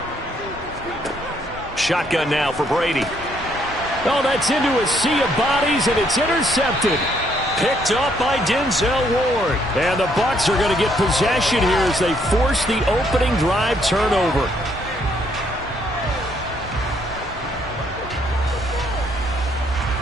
Shotgun now for Brady. Oh, that's into a sea of bodies, and it's intercepted. Picked up by Denzel Ward. And the Bucs are going to get possession here as they force the opening drive turnover.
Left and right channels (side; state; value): both; normal; correlation 0.70